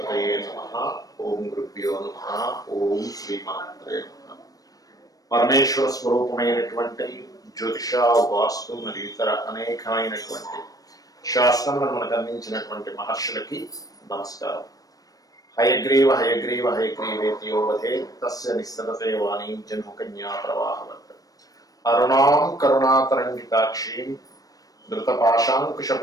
నమః. ఓం గురుభ్యో నమః. ఓం శ్రీమాత్రే నమః. పరమేశ్వర స్వరూపమైనటువంటి జ్యోతిష, వాస్తు మరియు ఇతర అనేకమైనటువంటి శాస్త్రములను మనకు అందించినటువంటి మహర్షులకి నమస్కారం. హయగ్రీవ హయగ్రీవ హయగ్రీవేతియో వధే తస్య నిస్సరతే వాణీం జన్మకన్యా ప్రవాహవత్ అరుణాం కరుణాతరంగితాక్షీం ధృతపాశాంకుశ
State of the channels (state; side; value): late; right; 0.18 ms